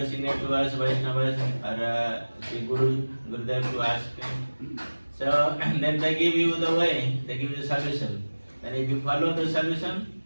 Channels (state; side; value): inverted; both; correlation -1.00